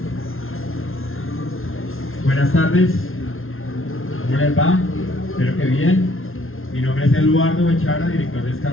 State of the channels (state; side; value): late; right; 0.61 ms